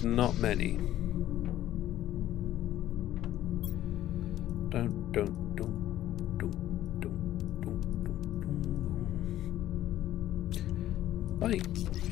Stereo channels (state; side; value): quieter; right; 13.3 dB